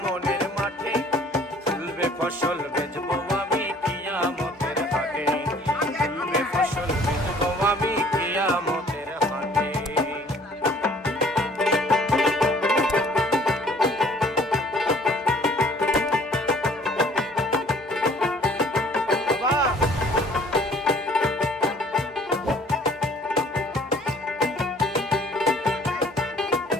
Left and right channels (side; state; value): both; normal; correlation 0.55